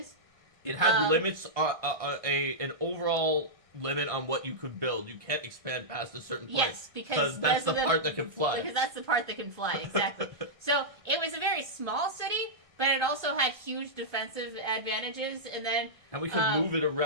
It had limits, an overall limit on what you could build. You can't expand past a certain point. Yes, because that's the part that can fly. Because that's the part that can fly, exactly. So it was a very small city, but it also had huge defensive advantages, and we could move it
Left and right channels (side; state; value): right; late; 1.6 ms